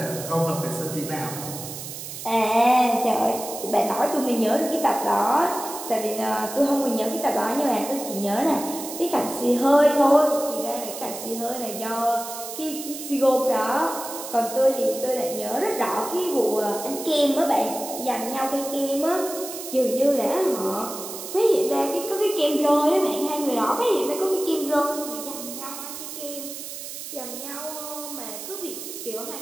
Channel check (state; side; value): noise; right; hiss, 9 dB below the sound